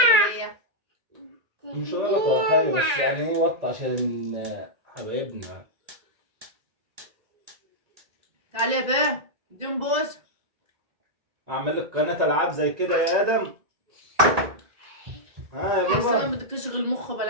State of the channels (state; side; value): late; left; 1.9 ms